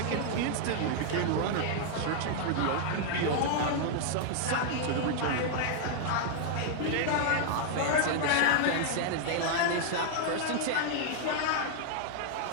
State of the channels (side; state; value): both; different; correlation 0.00